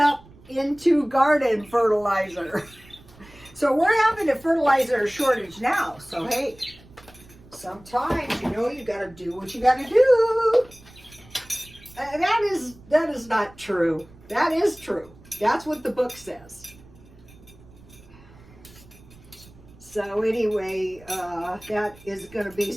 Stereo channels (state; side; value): noise; right; rumble, 23 dB below the sound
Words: into garden fertilizer. So we're having a fertilizer shortage now. So hey, sometimes, you know, you got to do what you got to do. That is not true. That is true. That's what the book says. So anyway, that is going to be